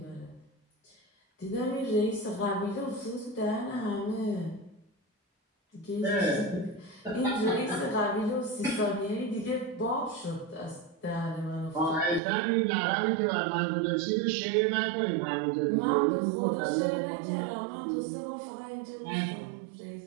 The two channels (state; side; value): drops out; left; at 12.2 s